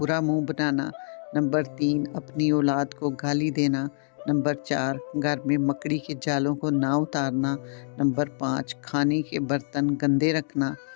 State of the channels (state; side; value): silent; right; digital silence